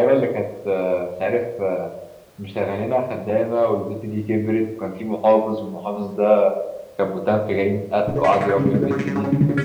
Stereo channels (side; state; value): both; identical; correlation 1.00